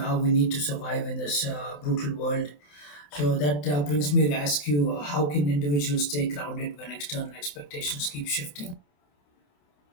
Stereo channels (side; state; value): right; late; 27 ms